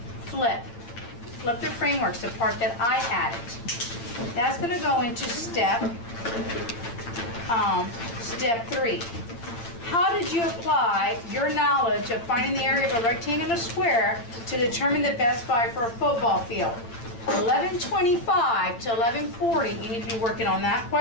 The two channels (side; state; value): right; late; 8.7 ms